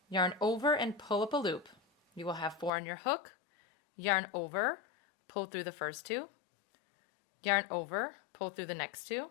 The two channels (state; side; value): drops out; right; at 2.7 s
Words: yarn over and pull up a loop. You will have 4 on your hook, yarn over, pull through the first 2, yarn over, pull through the next 2,